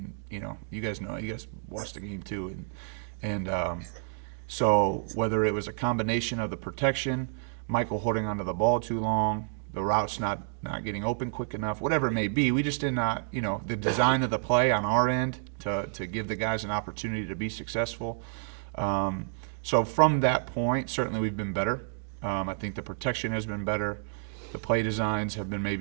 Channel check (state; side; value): silent; left; digital silence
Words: you guys watched the game too. So whether it was a combination of the protection, Michael holding onto the ball too long, the routes not getting open quick enough, whatever it may be, we just did not, the design of the play on our end to give the guys an opportunity to be successful. So from that point, certainly we've been better. I think the protection has been better. The play designs have been